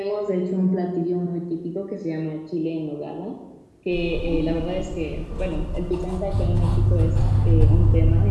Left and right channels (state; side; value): identical; both; correlation 1.00